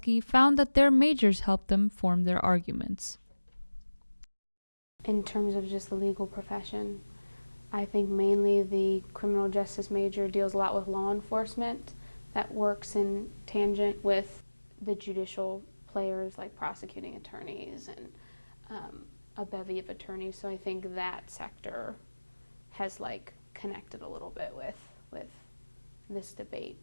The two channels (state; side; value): inverted; both; correlation -1.00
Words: found that their majors helped them form their arguments. In terms of just the legal profession, I think mainly the criminal justice major deals a lot with law enforcement that works in tangent with the judicial players like prosecuting attorneys and a bevy of attorneys. So I think that sector has connected a little bit with this debate